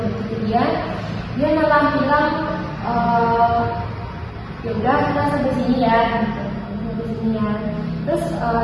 dia malah bilang ya udah kita sampai sini ya gitu, sampai sini ya. Terus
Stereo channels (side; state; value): both; identical; correlation 1.00